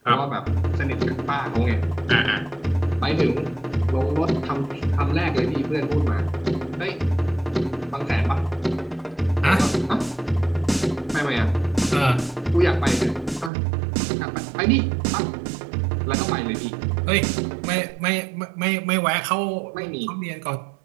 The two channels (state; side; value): drops out; left; at 13.5 s